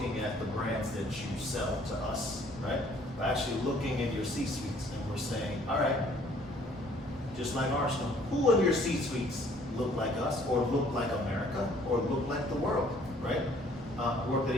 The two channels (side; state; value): both; normal; correlation 0.59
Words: at the brands that you sell to us, right? We're actually looking in your C-suites and we're saying, all right, just like Arsenal, who in your C-suites look like us or look like America or look like the world, right? Worked at